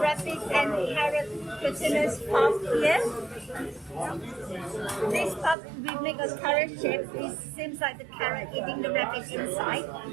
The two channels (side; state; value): left; drops out; at 5.6 s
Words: and carrot glutinous puff here. This puff we make a carrot shape. It seems like the carrot eating the rabbit inside.